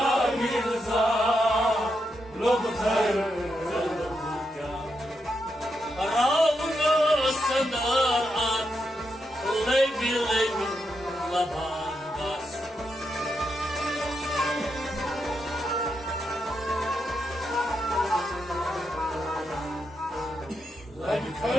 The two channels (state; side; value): normal; both; correlation 0.83